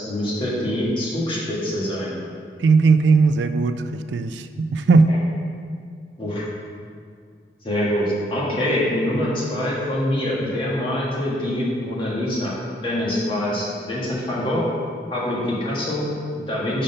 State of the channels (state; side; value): normal; both; correlation 0.72